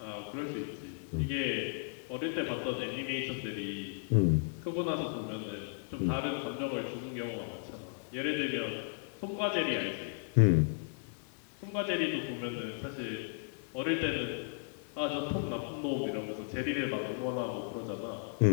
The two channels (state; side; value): silent; right; digital silence